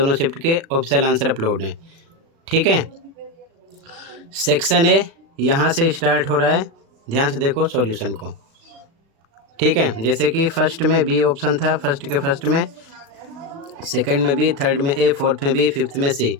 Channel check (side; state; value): left; late; 36 ms